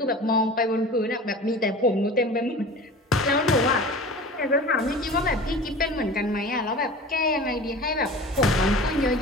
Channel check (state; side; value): normal; both; correlation 0.37